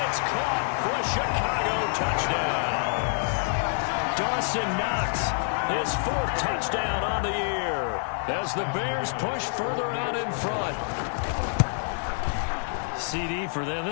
it's caught for a Chicago touchdown. Dawson Knox, his 4th touchdown on the year, as the Bears push further out in front. CD for them.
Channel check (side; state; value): right; silent; 60 dB below the other